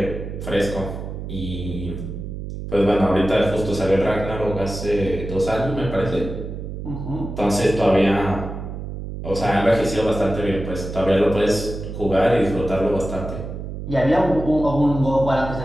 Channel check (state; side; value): noise; right; hum, 8 dB below the sound